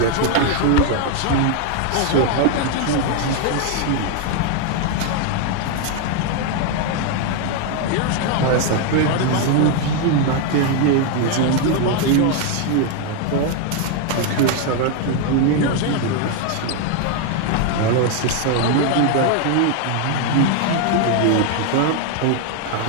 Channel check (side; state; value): both; different; correlation 0.01